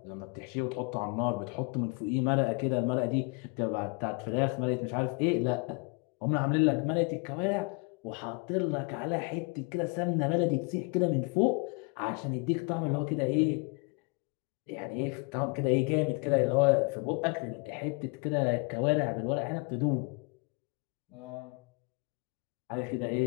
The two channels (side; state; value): right; quieter; 32.9 dB